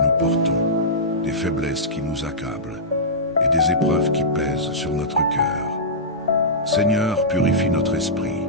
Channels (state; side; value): normal; both; correlation -0.15